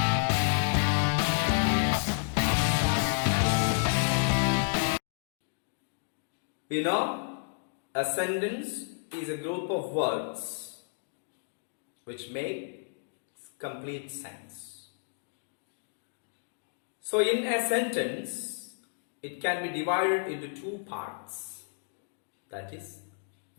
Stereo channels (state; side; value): silent; right; digital silence